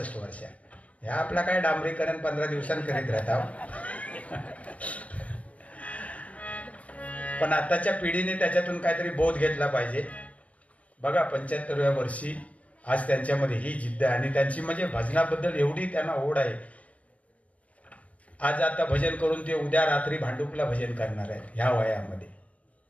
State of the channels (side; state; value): right; late; 0.066 ms